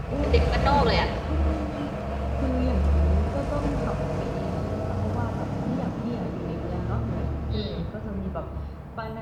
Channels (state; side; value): identical; both; correlation 1.00